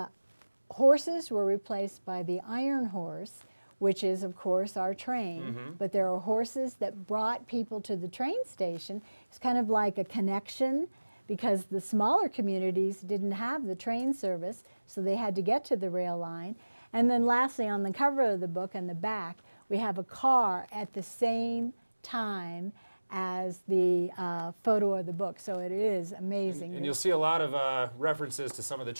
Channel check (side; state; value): both; inverted; correlation -1.00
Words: horses were replaced by the iron horse, which is, of course, our train. But there are horses that brought people to the train station. It's kind of like a connection, because the smaller communities didn't have the train service, so they had to get to the rail line. And then lastly, on the cover of the book, on the back, we have a car at the same time as the photo of the book. So it is amazing. And you'll see a lot of references to some of the